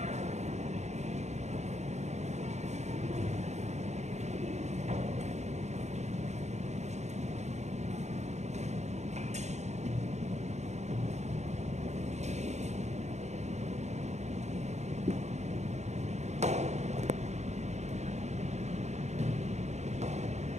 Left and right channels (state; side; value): late; left; 0.33 ms